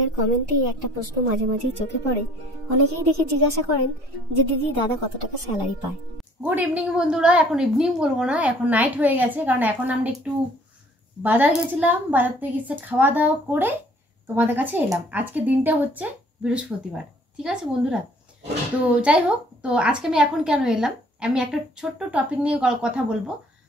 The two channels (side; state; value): both; normal; correlation 0.56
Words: কমেন্টেই একটা প্রশ্ন মাঝে মাঝেই চোখে পড়ে। অনেকেই দেখে জিজ্ঞাসা করেন যে দিদি দাদা কত টাকা স্যালারি পায়। গুড ইভিনিং বন্ধুরা, এখন ইভিনিং বলবো না, এখন নাইট হয়ে গেছে, কারণ এখন আমরা একটু বাজার গেছিলাম, বাজার থেকে এসে খাওয়া দাওয়া করে তোমাদের কাছে এলাম। আজকে দিনটা হচ্ছে বৃহস্পতিবার, ঠিক আছে বন্ধুরা। তো যাই হোক, তো আজকে আমি এখন কেন এলাম, আমি একটা ছোট্ট টপিক নিয়ে কথা বলবো।